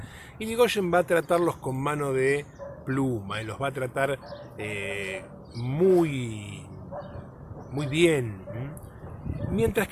Irigoyen va a tratarlos con mano de pluma y los va a tratar muy bien. Mientras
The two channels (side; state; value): both; identical; correlation 1.00